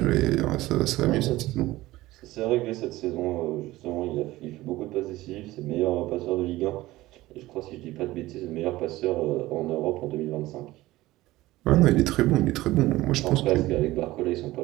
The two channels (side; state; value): left; quieter; 17.6 dB